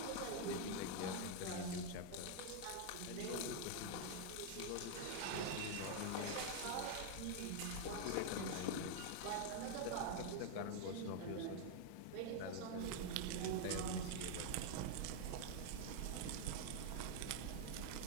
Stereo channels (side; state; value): both; different; correlation 0.00